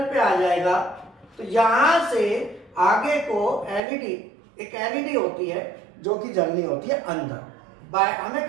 पे आ जाएगा तो यहां से आगे को एलईडी, एक एलईडी होती है जो कि जलनी होती है अंदर। हमें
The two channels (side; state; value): left; drops out; at 3.8 s